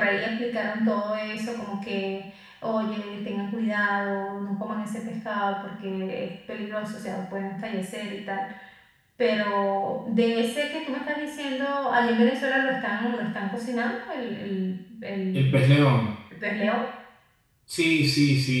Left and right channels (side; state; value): both; identical; correlation 1.00